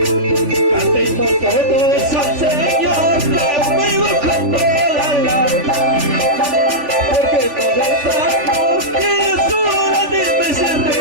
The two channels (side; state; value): left; late; 3.4 ms